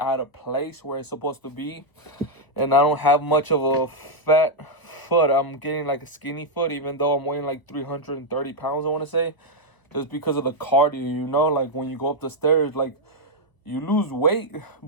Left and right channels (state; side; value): late; right; 1.0 ms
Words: of place where it's supposed to be. And I don't have much of a fat foot. I'm getting like a skinny foot, even though I'm weighing like 330 pounds, I want to say. Just because of the cardio, like when you go up the stairs, like, you lose weight,